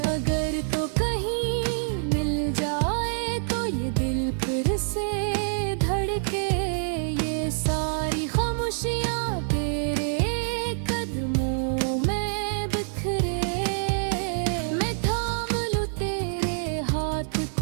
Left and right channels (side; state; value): left; silent; 59 dB below the other